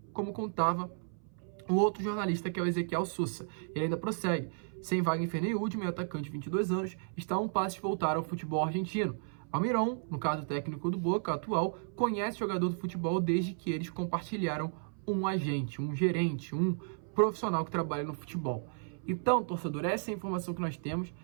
como contava o outro jornalista, que é o Ezequiel Sousa. Ele ainda prossegue: sem Wagner Ferney, meu atacante de 22 anos, está a um passo de voltar ao futebol argentino. Almiron, no caso técnico do Boca atual, conhece o jogador do futebol desde que eles compartilharam um agente, um gerente, um profissional que trabalha no futebol. Então, torcedor, essa é a informação que nós temos.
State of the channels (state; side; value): silent; left; 55 dB below the other